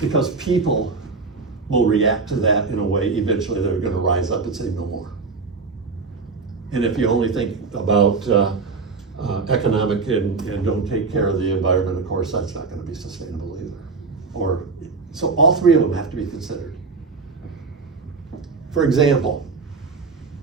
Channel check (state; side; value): quieter; left; 4.5 dB